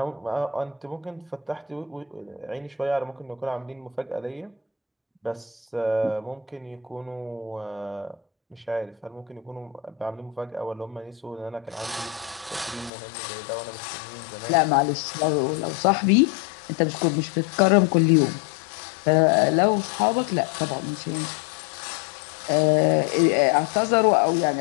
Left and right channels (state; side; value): drops out; right; at 12.9 s